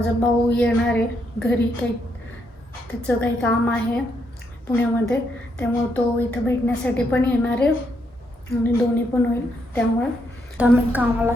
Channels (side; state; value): both; normal; correlation 0.77